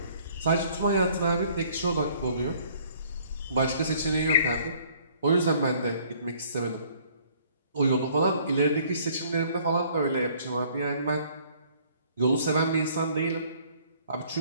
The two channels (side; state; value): both; inverted; correlation -0.59